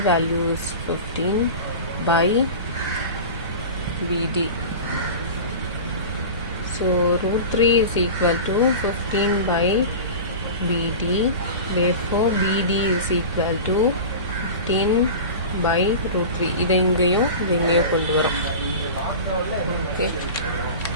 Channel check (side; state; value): both; inverted; correlation -0.31